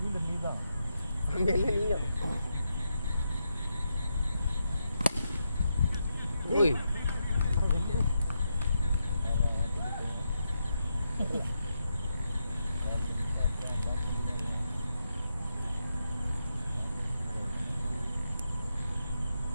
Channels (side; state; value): both; inverted; correlation -0.84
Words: நீதான் அங்க இல்ல நீங்க ஓய்